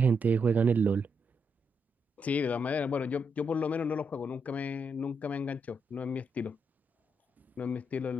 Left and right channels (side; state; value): both; normal; correlation 0.80